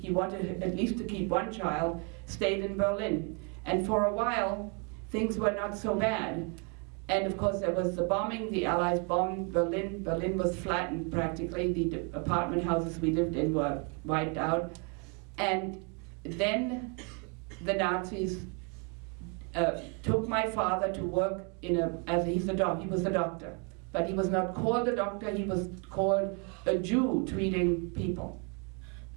wanted at least to keep one child, stayed in Berlin. And for a while, things were not so bad. And of course, there was the bombing. The Allies bombed Berlin. Berlin was flattened practically. The apartment houses we lived in were wiped out. And then the Nazis took my father to work in he was a doctor. But he was not called a doctor, he was called a Jew treating people.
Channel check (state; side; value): quieter; left; 35.7 dB